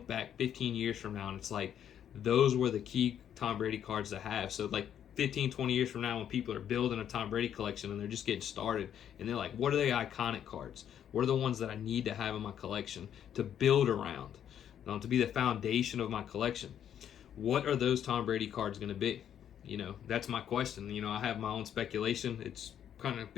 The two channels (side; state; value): right; quieter; 9.6 dB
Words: back 15 years from now and it's like, those were the key Tom Brady cards to have. So like 15, 20 years from now when people are building a Tom Brady collection and they're just getting started and they're like, what are the iconic cards? What are the ones that I need to have in my collection to build around, to be the foundation of my collection? What are those Tom Brady cards going to be? You know, that's my question. You know, I have my own speculation. It's kind of